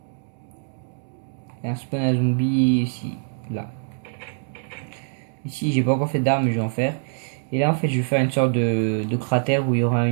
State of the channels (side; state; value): left; silent; digital silence